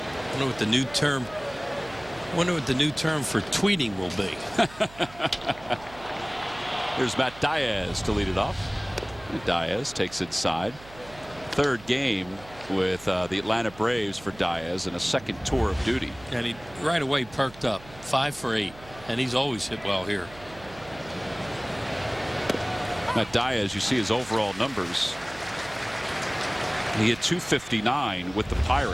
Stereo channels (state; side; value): noise; right; hum, 20 dB below the sound